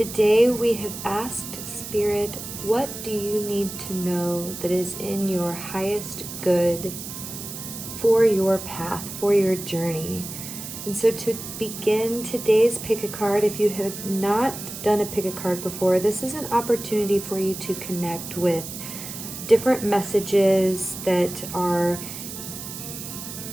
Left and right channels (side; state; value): right; noise; hiss, 9 dB below the sound